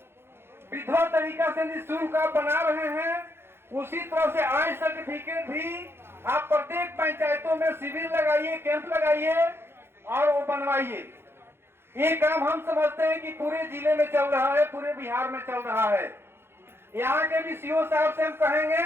विधिवत तरीका से निःशुल्क आप बना रहे हैं, उसी तरह से आय सर्टिफिकेट भी आप प्रत्येक पंचायतों में शिविर लगाइए, कैंप लगाइए और वो बनवाइए। ये काम हम समझते हैं कि पूरे जिले में चल रहा है, पूरे बिहार में चल रहा है। यहाँ के भी सीओ साहब से हम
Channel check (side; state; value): left; late; 0.11 ms